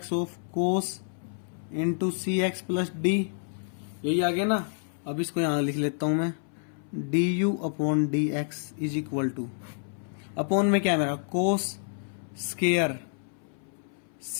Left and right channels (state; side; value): silent; right; 59 dB below the other